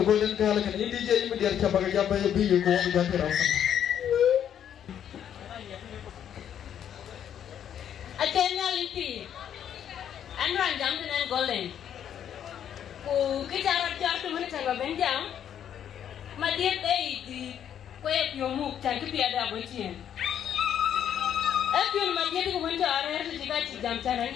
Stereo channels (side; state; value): right; quieter; 9.5 dB